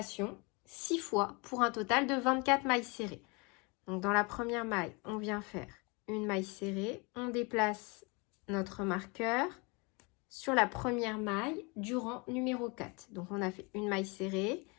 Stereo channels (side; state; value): right; quieter; 29.4 dB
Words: 6 fois pour un total de 24 mailles serrées. Donc dans la première maille, on vient faire une maille serrée, on déplace notre marqueur sur la première maille du rang numéro 4. Donc on a fait une maille serrée,